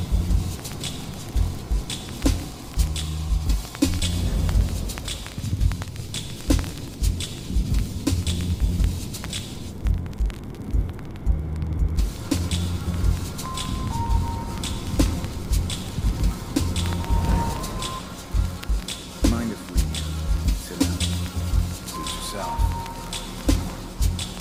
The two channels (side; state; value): both; identical; correlation 1.00